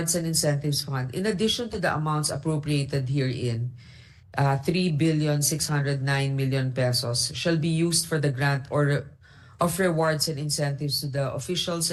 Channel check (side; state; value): both; identical; correlation 1.00